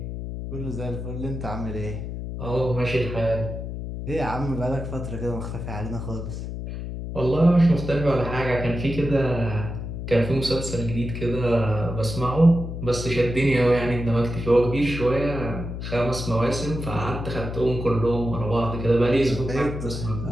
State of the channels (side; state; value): left; noise; hum, 6 dB below the sound